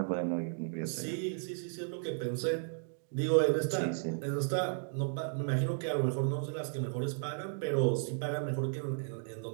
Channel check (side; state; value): left; silent; digital silence